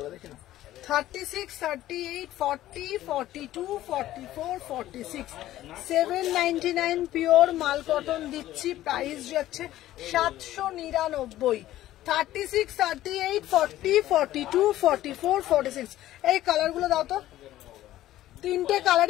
देखे ना। 36, 38, 40, 42, 44, 46 799 পিওর মাল কটন দিচ্ছি। প্রাইস যাচ্ছে 799। 36, 38, 40, 42, 44, 46 এই কালারগুলো দাও তো। তিনটে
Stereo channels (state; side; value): quieter; right; 14.3 dB